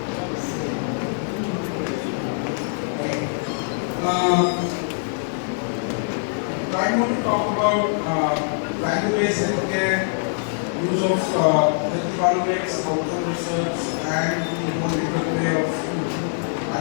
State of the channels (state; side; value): silent; right; digital silence